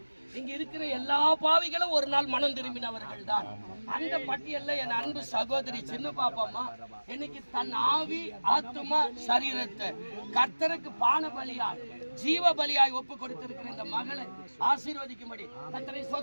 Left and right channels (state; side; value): inverted; both; correlation -1.00